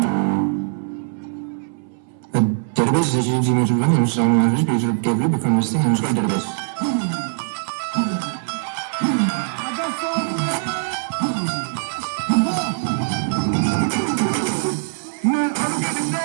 The database is a GMS one image down average page of cable become listing and called database.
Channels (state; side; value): silent; left; 60 dB below the other